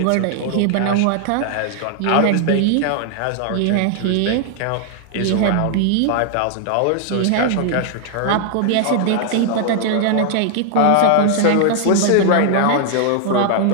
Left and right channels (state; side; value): different; both; correlation 0.00